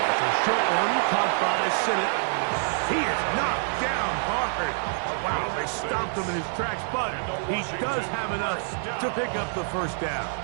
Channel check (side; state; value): left; silent; digital silence